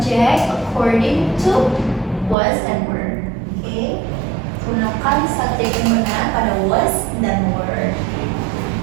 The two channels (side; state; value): left; drops out; at 2.4 s